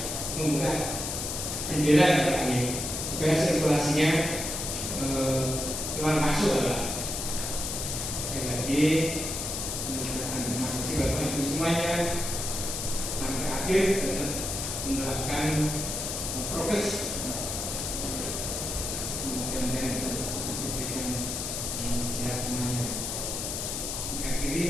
membuka jendela supaya sirkulasinya keluar masuk lah. Sekali lagi terima kasih Bapak Ibu semuanya, sampai akhir tetap menerapkan prokes.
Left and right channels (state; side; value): noise; left; hiss, 3 dB below the sound